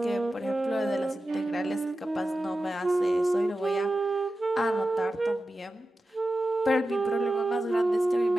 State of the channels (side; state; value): both; normal; correlation 0.93